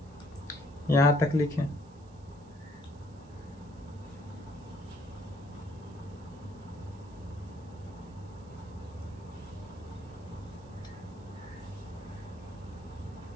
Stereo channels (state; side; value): noise; right; hiss, 29 dB below the sound